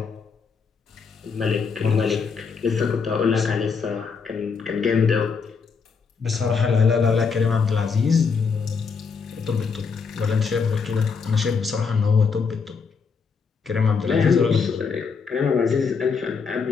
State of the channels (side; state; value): right; quieter; 5.4 dB